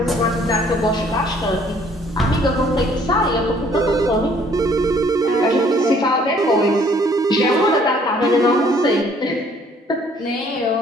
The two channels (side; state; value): both; normal; correlation 0.60